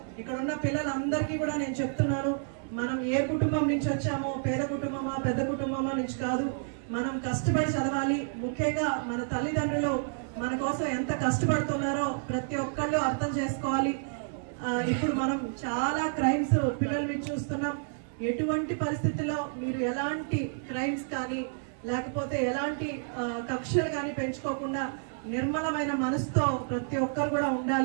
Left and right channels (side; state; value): left; silent; 58 dB below the other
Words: ఇక్కడ ఉన్న పిల్లలందరికీ కూడా నేను చెప్తున్నాను, మనం ఏ కుటుంబం నుంచి వచ్చామో, పేద కుటుంబమా పెద్ద కుటుంబమా నుంచి కాదు, మనం కష్టపడి చదవాలి. ముఖ్యంగా మన తల్లిదండ్రులు మన కోసం ఎంత కష్టపడుతున్నారో ప్రతి ఒక్కళ్ళు అర్థం చేసుకోవాలి. ఇప్పుడు మనం చాలా క్రైమ్స్ పిల్లల మీద చూస్తున్నాం. ఎటువంటి పరిస్థితుల్లో మీరు ఎలాంటి క్రైమ్స్ కానీ లేకపోతే ఎలాంటి కక్షలు కానీ పెంచుకోకుండా నిర్మలమైన మనసుతో ప్రతి ఒక్కరు కూడా